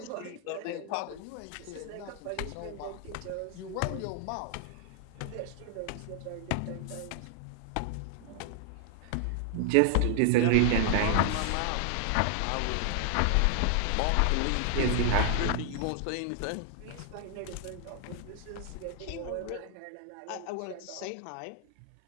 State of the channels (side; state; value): both; different; correlation 0.00